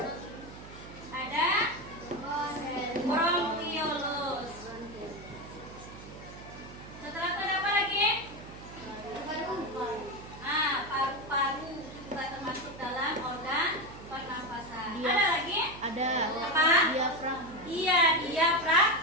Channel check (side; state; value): right; noise; hum, 15 dB below the sound